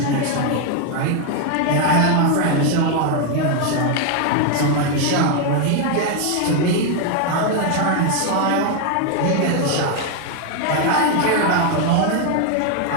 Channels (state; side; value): different; both; correlation 0.01